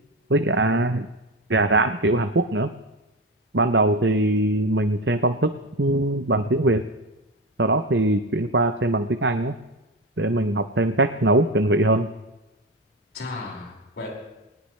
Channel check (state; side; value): normal; both; correlation 0.19